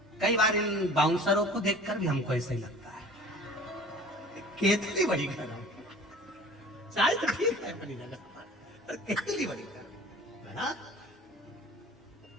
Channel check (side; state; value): both; normal; correlation 0.44